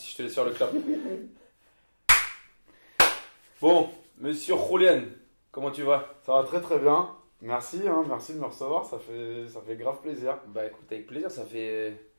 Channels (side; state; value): both; inverted; correlation -1.00